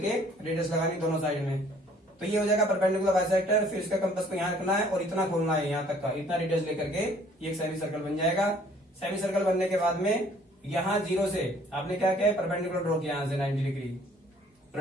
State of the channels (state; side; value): normal; both; correlation 0.58